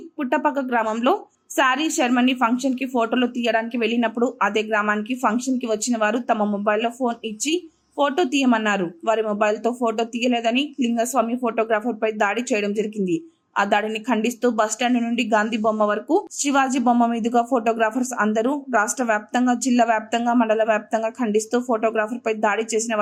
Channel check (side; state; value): both; identical; correlation 1.00